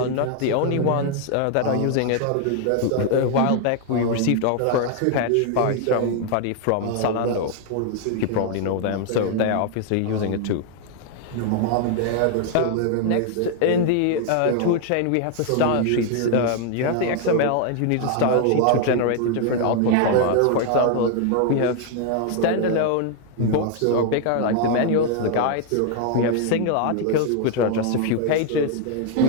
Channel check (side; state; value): both; different; correlation 0.00